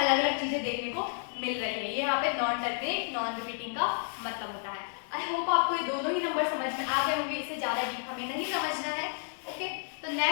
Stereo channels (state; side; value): silent; right; 56 dB below the other